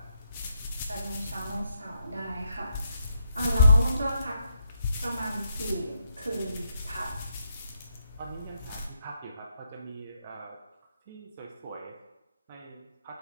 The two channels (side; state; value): both; inverted; correlation -0.78